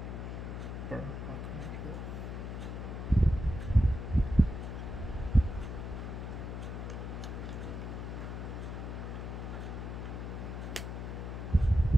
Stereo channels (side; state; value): left; noise; hum, 5 dB below the sound